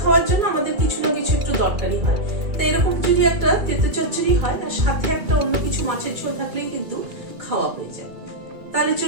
খাওয়ার জন্য আমাদের কিছু না কিছু একটু দরকারি হয়, তাই এরকম যদি একটা তেঁতো চচ্চড়ি হয় আর সাথে একটা অন্য কিছু মাছের ঝোল থাকলেই কিন্তু খাওয়া হয়ে যায়। তাহলে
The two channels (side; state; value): left; late; 2.3 ms